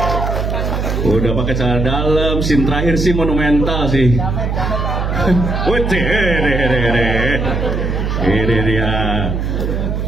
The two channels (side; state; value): right; noise; hum, 1 dB below the sound